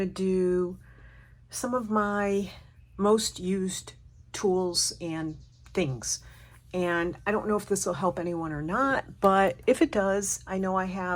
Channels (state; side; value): identical; both; correlation 1.00